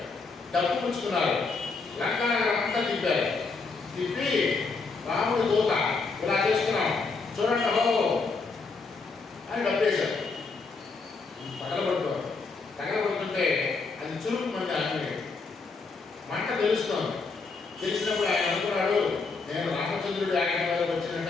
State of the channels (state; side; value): quieter; right; 4.3 dB